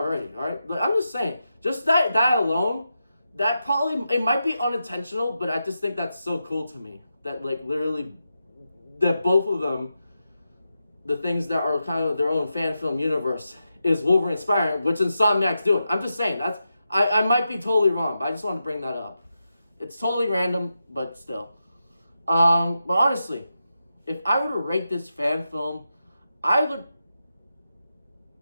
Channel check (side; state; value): both; inverted; correlation -0.88